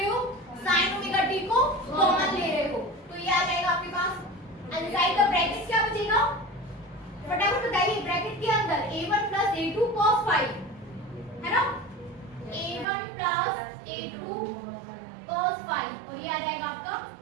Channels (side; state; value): left; drops out; at 12.9 s